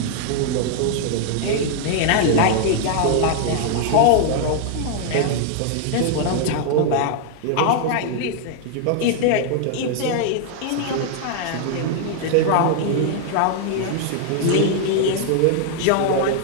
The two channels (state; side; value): different; both; correlation -0.01